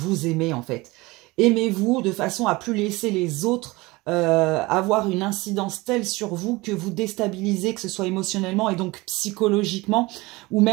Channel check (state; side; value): quieter; left; 22.1 dB